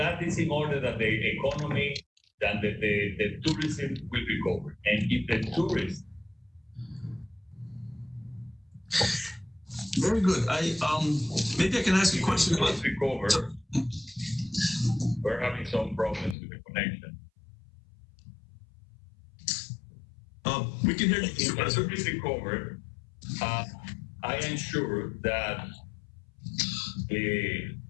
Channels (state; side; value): drops out; right; at 16.4 s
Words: is in order that the economy and the tourism will recover. And if the tourists very good. Maybe I can ask you a question about recover. Sure. We're having some problems with the connection. We can hear you. If the tourists recover, I am sure that the